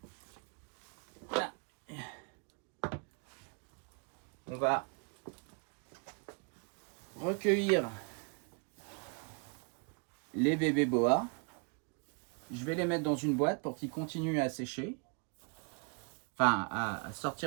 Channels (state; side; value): quieter; left; 38.2 dB